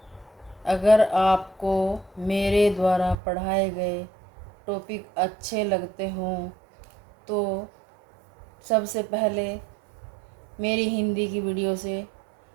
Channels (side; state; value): left; drops out; at 3.2 s